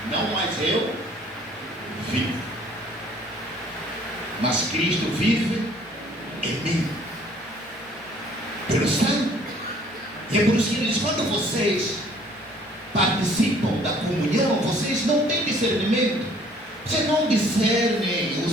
não mais eu vivo, mas Cristo vive em mim, pelo sangue. E é por isso que ele diz, quando vocês participam da comunhão, vocês não têm discernimento, vocês não discernem o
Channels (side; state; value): both; normal; correlation 0.57